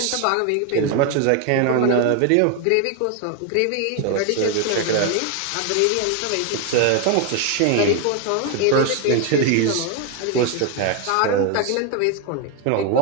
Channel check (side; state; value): both; different; correlation 0.01